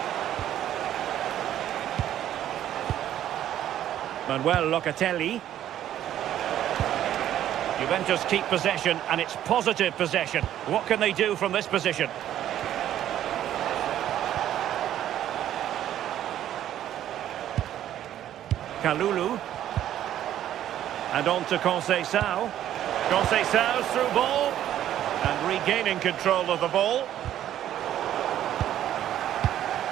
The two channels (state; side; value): quieter; left; 11.6 dB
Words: Manuel Locatelli. Juventus keep possession, and it's positive possession. What can they do from this position? Kalulu. And on to Conceição. Conceição's through ball. And regaining control of the ball.